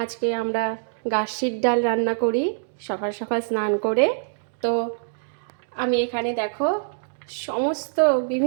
আজকে আমরা গাসির ডাল রান্না করি সকাল সকাল স্নান করে। তো আমি এখানে দেখো সমস্ত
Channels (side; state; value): left; silent; digital silence